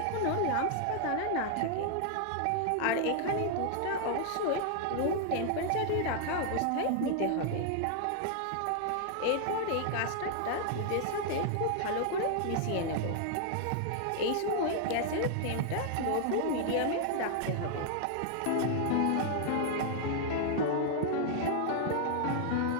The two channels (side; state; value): both; different; correlation 0.00